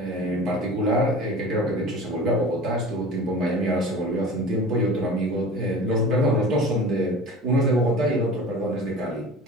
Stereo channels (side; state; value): both; normal; correlation 0.38